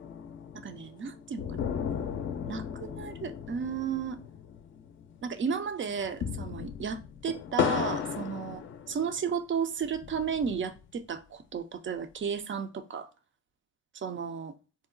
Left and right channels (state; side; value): normal; both; correlation 0.18